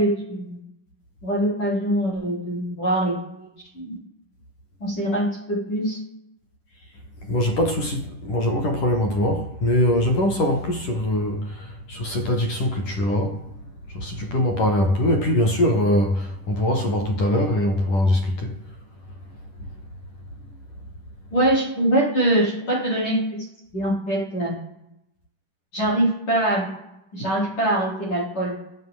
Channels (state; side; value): late; right; 10 ms